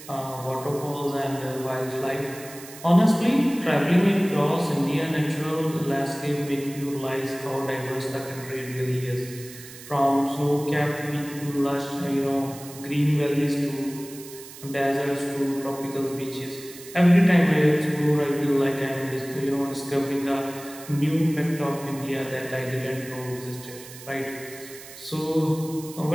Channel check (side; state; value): right; noise; hiss, 16 dB below the sound